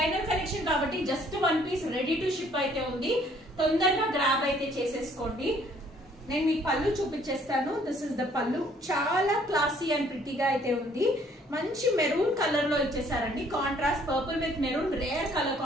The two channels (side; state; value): both; normal; correlation 0.61